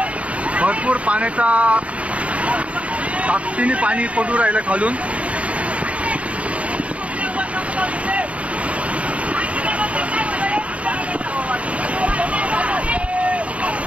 भरपूर पाण्याचा ताकदीने पाणी पडू राहिलं खालून.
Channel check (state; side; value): late; left; 0.065 ms